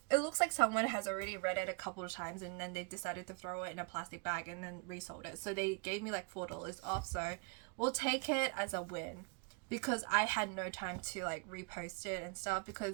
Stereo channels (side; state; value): left; quieter; 34.4 dB